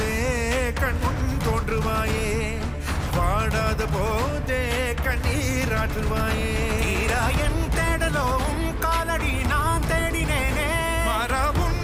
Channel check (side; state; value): both; identical; correlation 1.00